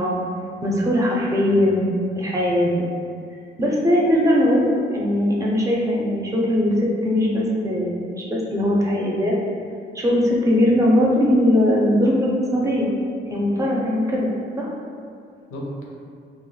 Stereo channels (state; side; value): normal; both; correlation 0.70